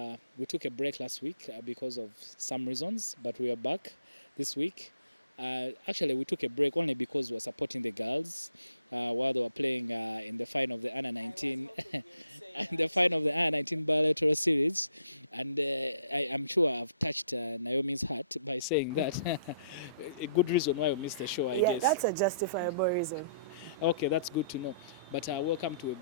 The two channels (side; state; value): both; inverted; correlation -0.65